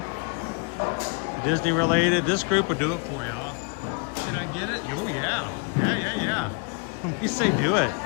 Disney related, this group would do it for y'all. Should I get it? Oh yeah. Yeah. We say do it.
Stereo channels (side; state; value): right; quieter; 34.8 dB